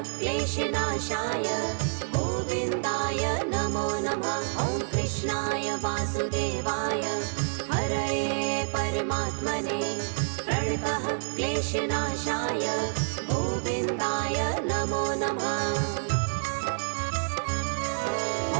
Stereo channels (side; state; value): left; silent; 59 dB below the other